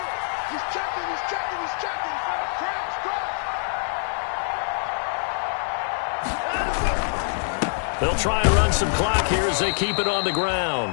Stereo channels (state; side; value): silent; right; digital silence